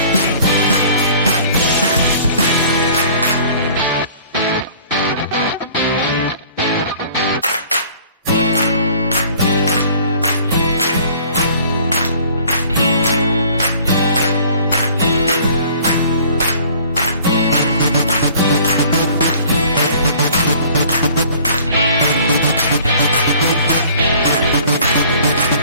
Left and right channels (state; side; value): inverted; both; correlation -0.52